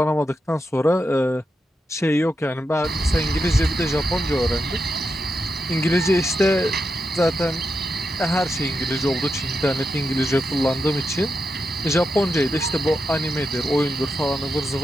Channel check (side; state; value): both; normal; correlation 0.86